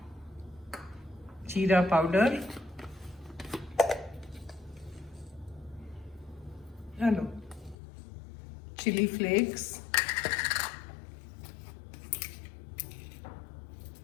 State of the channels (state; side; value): drops out; right; at 7.8 s